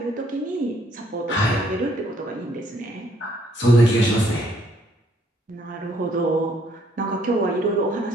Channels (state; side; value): normal; both; correlation 0.67